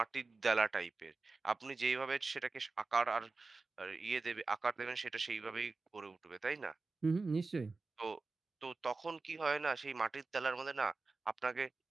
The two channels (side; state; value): left; quieter; 3.8 dB